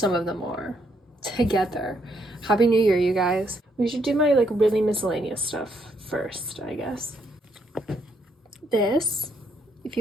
of them are together. Happy New Year, you guys. We should do my like really miscellaneous stuff first, I guess. This, if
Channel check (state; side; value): normal; both; correlation 0.73